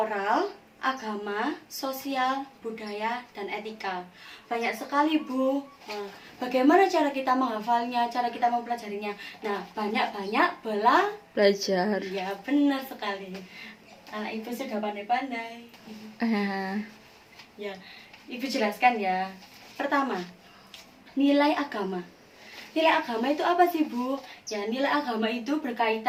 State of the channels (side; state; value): both; identical; correlation 1.00